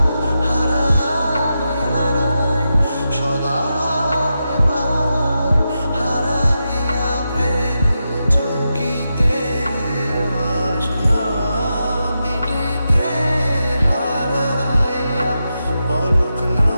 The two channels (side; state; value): both; inverted; correlation -0.88